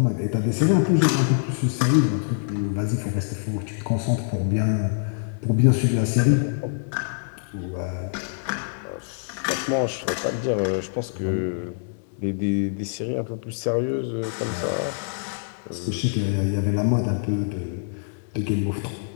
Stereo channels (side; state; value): right; silent; 62 dB below the other